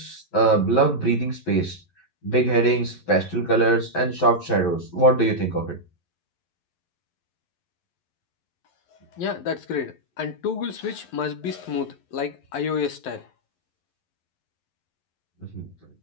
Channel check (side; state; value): right; late; 11 ms